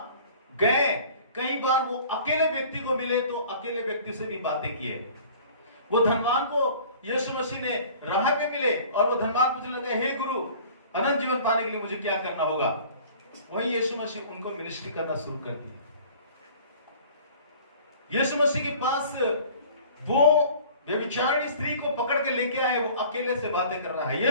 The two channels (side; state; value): both; inverted; correlation -0.47